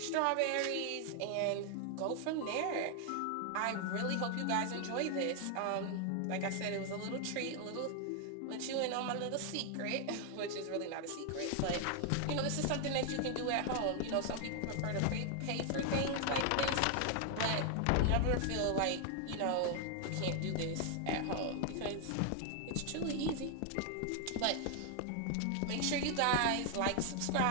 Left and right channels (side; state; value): both; different; correlation 0.00